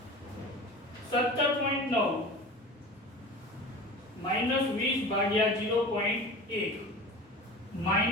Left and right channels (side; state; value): both; normal; correlation 0.35